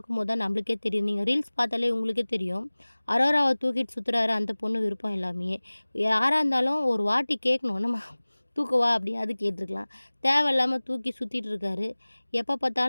தான் நம்மளுக்கே தெரியும். நீங்க ரீல்ஸ் பார்த்தாலே உங்களுக்கே தெரியும். அரோராவ தூக்கிட்டு சுத்துறாரு அந்த பொண்ணு விருப்பம் இல்லாமயே. யாரா இருந்தாலும் ஒரு வாட்டி கேட்கணும். நம்ம தூக்கவா அப்படியாவது கேட்டுருக்கலாம். தேவையில்லாம தூக்கி சுத்திட்டு இருக்காரு. எப்ப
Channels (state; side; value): inverted; both; correlation -1.00